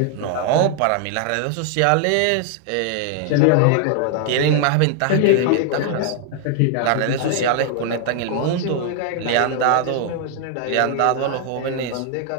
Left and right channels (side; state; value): both; different; correlation 0.00